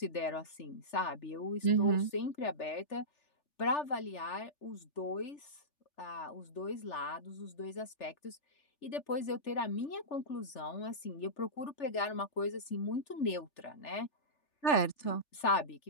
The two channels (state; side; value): late; right; 3.4 ms